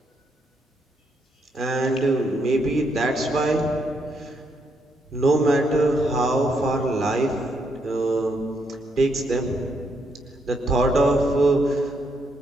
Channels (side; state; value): both; normal; correlation 0.76